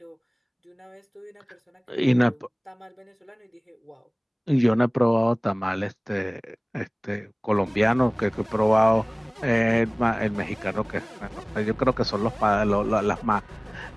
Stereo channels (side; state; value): both; identical; correlation 1.00